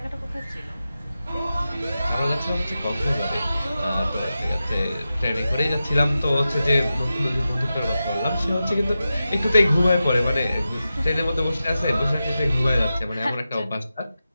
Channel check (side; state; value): both; inverted; correlation -0.92